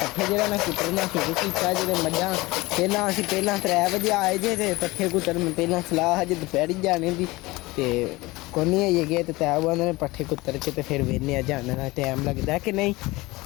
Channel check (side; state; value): right; quieter; 21.3 dB